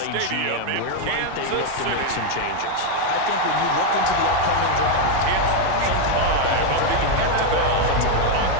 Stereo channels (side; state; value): both; different; correlation 0.01